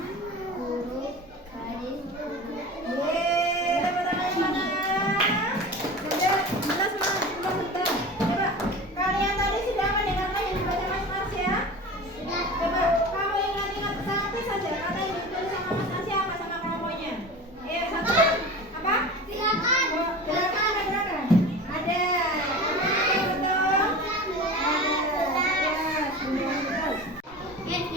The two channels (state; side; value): normal; both; correlation 0.33